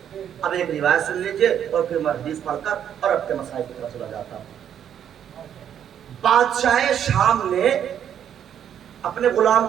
اب ایک روایت سن لیجئے اور پھر میں حدیث پڑھ کر اور اپنے مسائل کی طرف چلا جاتا ہوں. بادشاہ شام نے اپنے غلام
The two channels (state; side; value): quieter; left; 9.3 dB